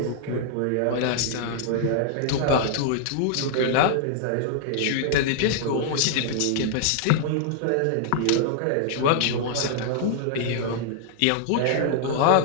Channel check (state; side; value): different; both; correlation -0.01